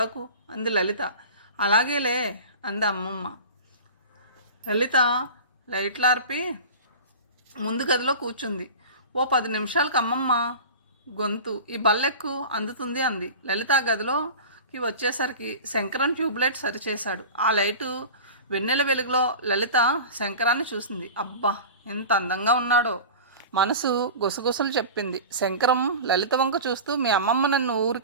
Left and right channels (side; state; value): both; inverted; correlation -0.34